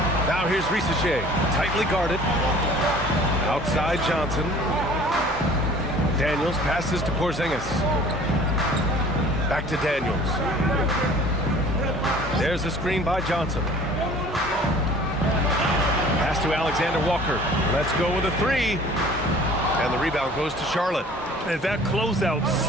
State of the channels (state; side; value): normal; both; correlation 0.49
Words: Now here's Risacher. Tightly guarded. Outside Johnson. Daniels passes to Porzingis. Back to Daniels. There's a screen by Johnson. Pass to Alexander Walker. Let's go with a 3. And the rebound goes to Charlotte. And that closeout